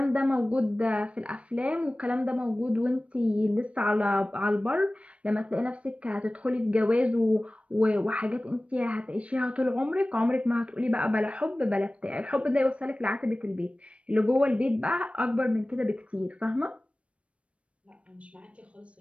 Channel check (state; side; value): late; left; 0.062 ms